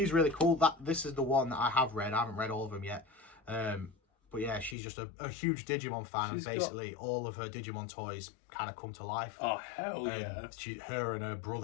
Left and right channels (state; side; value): drops out; right; at 4.8 s